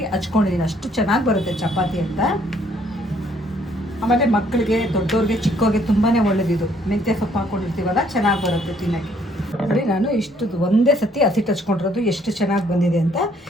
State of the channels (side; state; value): both; normal; correlation 0.65